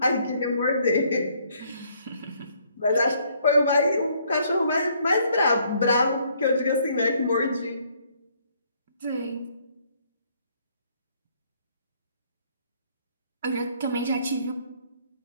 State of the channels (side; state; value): both; inverted; correlation -0.66